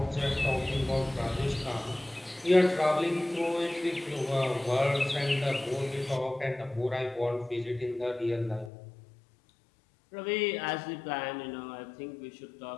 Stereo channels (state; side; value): drops out; right; at 8.7 s